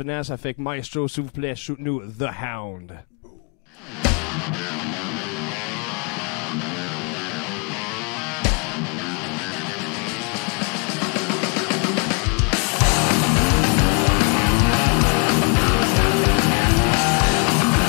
Ça fait que Maestro, s'il vous plaît, shoot-nous The Hound.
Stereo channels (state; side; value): quieter; right; 36.3 dB